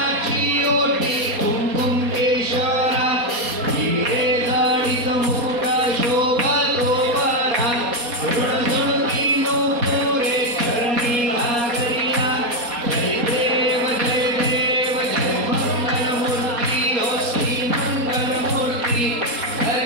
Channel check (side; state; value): left; late; 4.2 ms